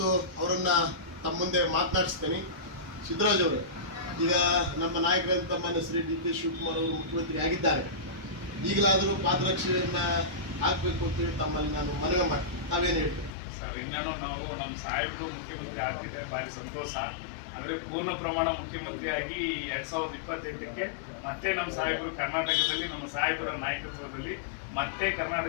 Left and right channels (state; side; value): drops out; right; at 13.3 s